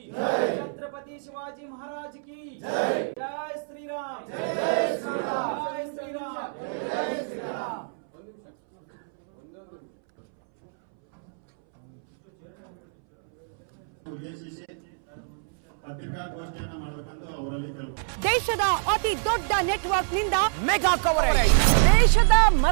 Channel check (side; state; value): left; silent; 61 dB below the other